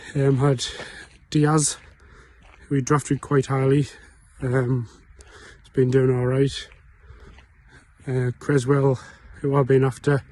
had Diaz, who he drafted quite highly. He's been doing alright. Creswell, who I've been after,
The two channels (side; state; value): both; identical; correlation 1.00